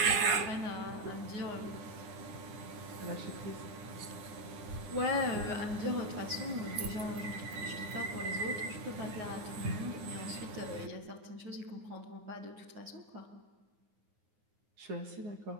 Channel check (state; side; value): late; left; 9.5 ms